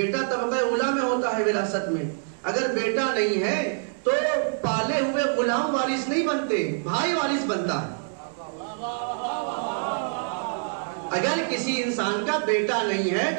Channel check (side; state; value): left; silent; digital silence